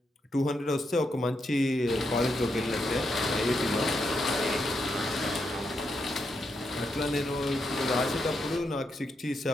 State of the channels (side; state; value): both; normal; correlation 0.82